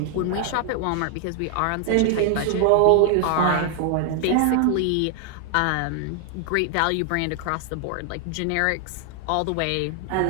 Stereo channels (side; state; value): both; different; correlation 0.00